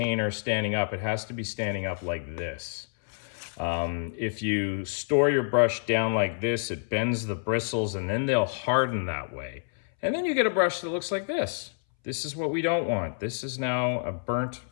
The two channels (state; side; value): silent; right; 59 dB below the other